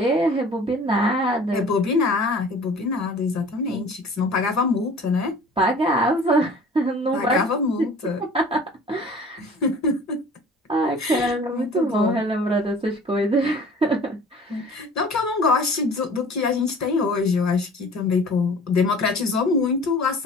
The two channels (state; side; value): normal; both; correlation 0.46